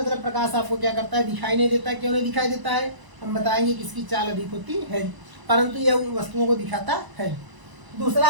प्रकाश आपको क्या करता है, दिखाई नहीं देता। क्यों नहीं दिखाई देता है, हम बताएंगे कि इसकी चाल अधिक होती है, परंतु यह उन वस्तुओं को दिखाता है। दूसरा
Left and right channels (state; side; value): late; left; 1.0 ms